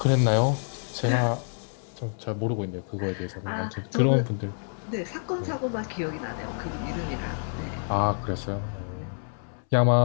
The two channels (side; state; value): right; silent; 60 dB below the other